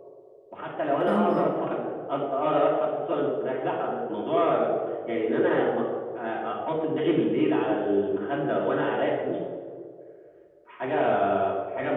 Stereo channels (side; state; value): both; identical; correlation 1.00